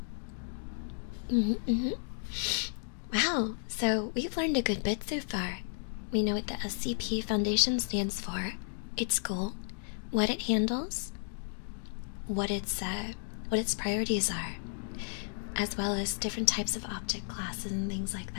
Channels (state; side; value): silent; right; digital silence